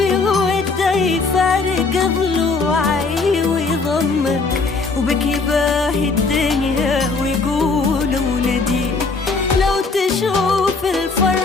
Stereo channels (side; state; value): right; quieter; 4.1 dB